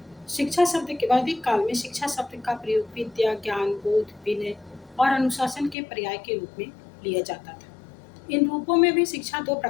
शिक्षा शब्द के वैदिक काल में शिक्षा शब्द का प्रयोग विद्या, ज्ञान, बोध, विनय और अनुशासन के पर्याय के रूप में लिया जाता था। इन रूपों में भी शिक्षा दो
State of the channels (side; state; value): right; drops out; at 5.8 s